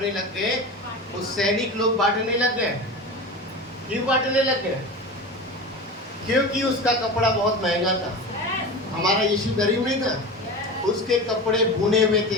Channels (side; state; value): both; normal; correlation 0.29